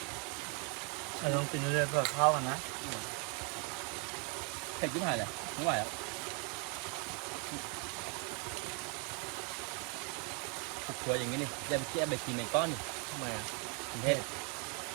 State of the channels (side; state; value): left; quieter; 31.9 dB